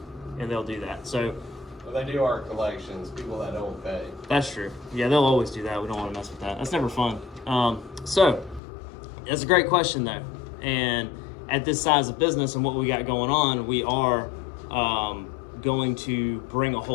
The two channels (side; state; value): right; drops out; at 8.6 s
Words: And they'll do that. So Well, they do our collections, people that don't pay. that's true. Yeah, they'll always do that. We don't want to mess with that. That's never fun. So that's a great question though. And at this size of business and what we got going on, we are going to bring a